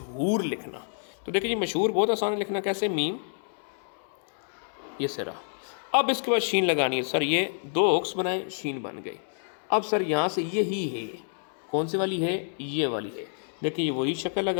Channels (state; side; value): silent; right; 59 dB below the other